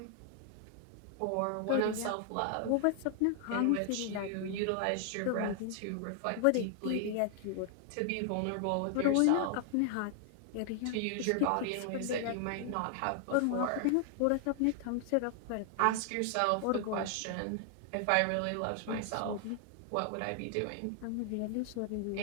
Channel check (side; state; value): both; different; correlation 0.00